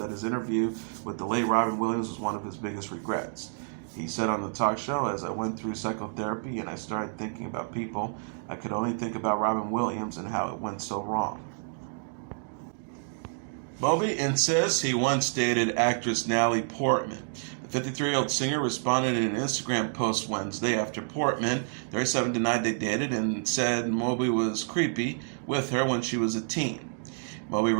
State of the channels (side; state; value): left; silent; digital silence